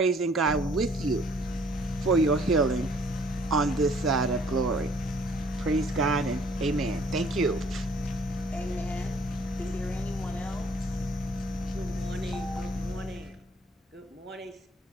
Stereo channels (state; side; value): normal; both; correlation 0.59